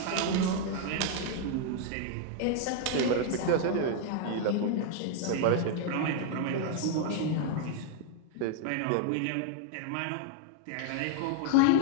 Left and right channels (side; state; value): both; different; correlation 0.00